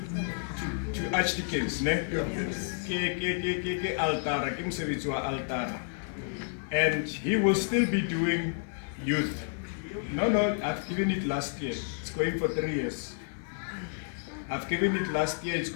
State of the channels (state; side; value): silent; right; 57 dB below the other